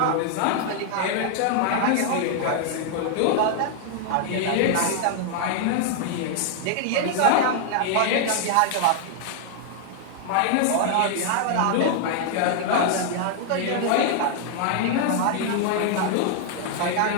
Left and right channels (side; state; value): both; different; correlation 0.00